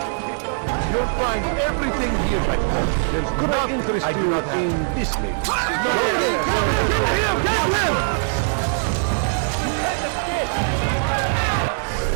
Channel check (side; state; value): left; silent; 56 dB below the other